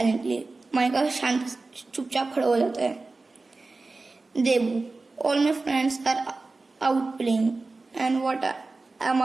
माइका शांत चुपचाप खड़ा हो जाता है। Debu, all my friends are out playing and what am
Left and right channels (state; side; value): quieter; left; 3.5 dB